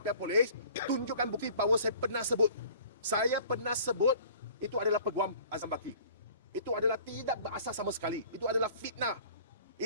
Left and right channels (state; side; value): inverted; both; correlation -0.49